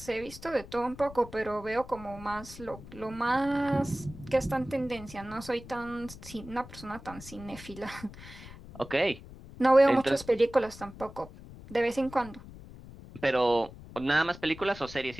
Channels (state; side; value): noise; left; rumble, 16 dB below the sound